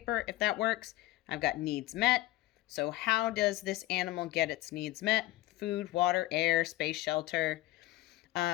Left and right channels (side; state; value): right; quieter; 16.7 dB